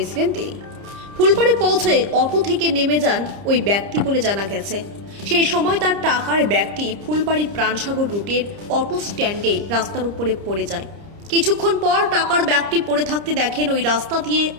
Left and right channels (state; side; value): late; left; 30 ms